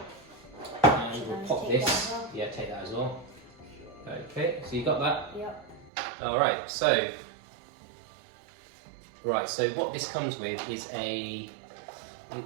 And we'll pop this. Yeah, take that as well. Okay, so you got that? Yep. Alright, so what this comes with is a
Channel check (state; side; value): drops out; left; at 5.9 s